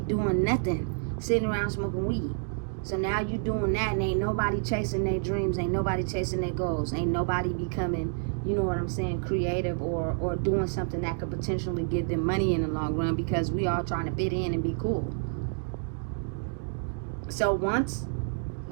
nothing, sitting around smoking weed. So now you doing that, and ain't nobody chasing their dreams, ain't nobody chasing their goals, ain't nobody becoming, creative or doing something that could potentially give them money in the long run, because we all trying to fit in and be cool. So once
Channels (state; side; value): silent; left; digital silence